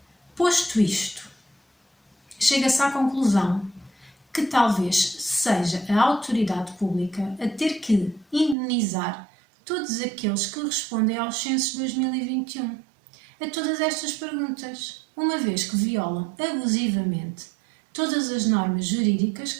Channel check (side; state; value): left; drops out; at 8.6 s